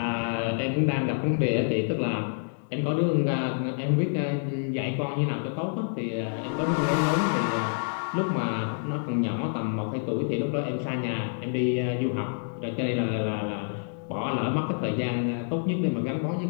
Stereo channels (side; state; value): right; silent; digital silence